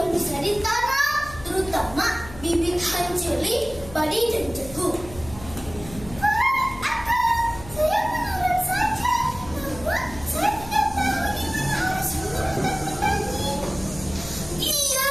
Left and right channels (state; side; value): noise; left; hum, 16 dB below the sound